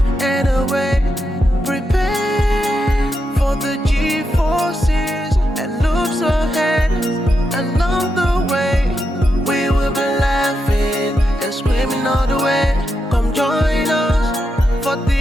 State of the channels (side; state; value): both; normal; correlation 0.85